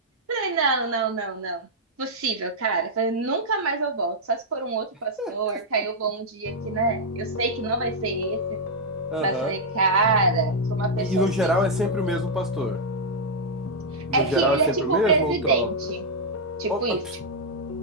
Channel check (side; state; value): both; normal; correlation -0.05